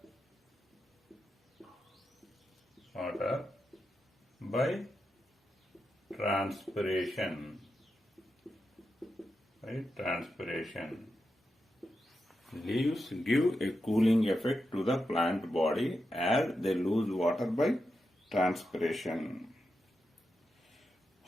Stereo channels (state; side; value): normal; both; correlation 0.88